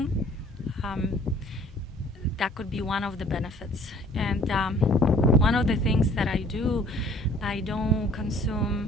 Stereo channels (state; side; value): normal; both; correlation 0.54